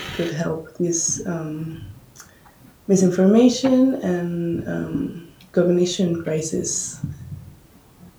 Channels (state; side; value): identical; both; correlation 1.00